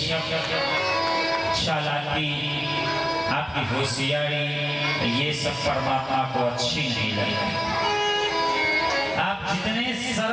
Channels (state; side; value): identical; both; correlation 1.00